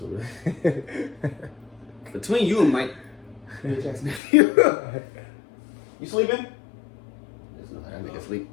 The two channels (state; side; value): drops out; right; at 4.2 s